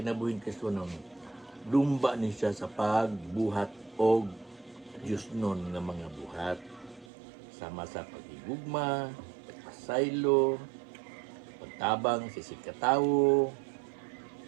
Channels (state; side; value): drops out; left; at 7.1 s